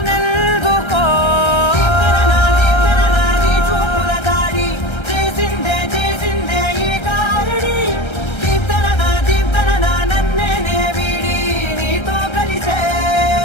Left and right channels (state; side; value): late; right; 1.3 ms